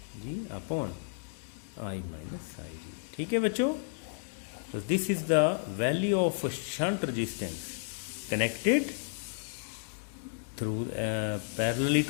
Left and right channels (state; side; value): silent; right; digital silence